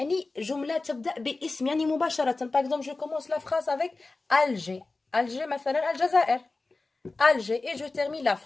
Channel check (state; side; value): quieter; right; 3.5 dB